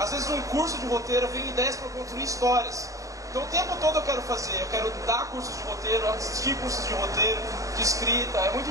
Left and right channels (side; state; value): left; late; 0.16 ms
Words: vezes um curso de roteiro vem ideias para construir histórias. Então o tempo todo eu quero dar cursos de roteiro, assistir cursos de roteiro, de escrita, é muito